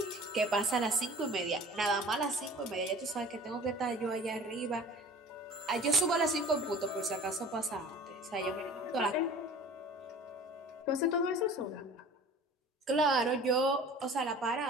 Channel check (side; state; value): both; normal; correlation 0.44